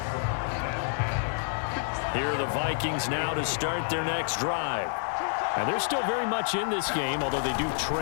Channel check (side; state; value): right; silent; digital silence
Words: Here are the Vikings now to start their next drive. And they're still very much in this game, although they do